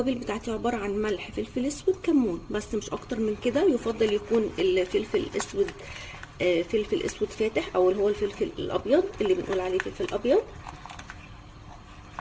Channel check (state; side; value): identical; both; correlation 1.00